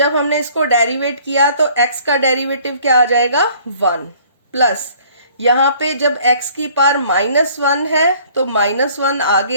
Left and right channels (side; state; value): both; inverted; correlation -0.56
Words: हमने इसको डेरिवेट किया तो x का डेरिवेटिव क्या आ जाएगा 1, प्लस यहाँ पे जब x की पावर माइनस 1 है तो माइनस 1